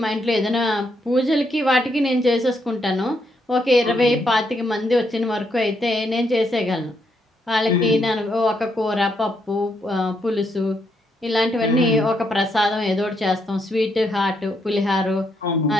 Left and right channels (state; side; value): normal; both; correlation 0.77